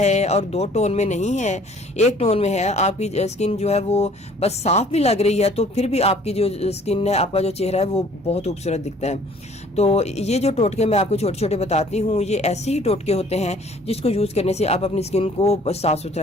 और दो टोन में नहीं है, एक टोन में है, आपकी स्किन जो है वो बस साफ भी लग रही है, तो फिर भी आपकी जो स्किन है, आपका जो चेहरा है वो बहुत खूबसूरत दिखता है। तो ये जो टोटके मैं आपको छोटे छोटे बताती हूँ, ये ऐसे ही टोटके होते हैं जिसको यूज करने से आप अपनी स्किन को साफ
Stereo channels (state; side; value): normal; both; correlation 0.55